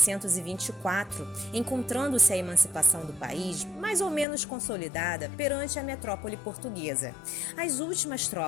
encontrando-se a emancipação do país mais ou menos consolidada perante a metrópole portuguesa. As últimas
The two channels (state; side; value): drops out; right; at 4.2 s